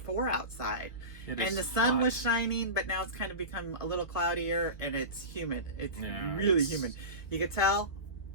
outside, and the sun was shining, but now it's kind of become a little cloudier and it's humid. It's really humid. You can tell.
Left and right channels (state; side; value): late; right; 1.4 ms